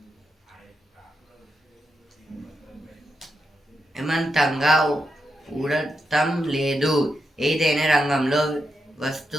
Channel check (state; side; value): normal; both; correlation 0.85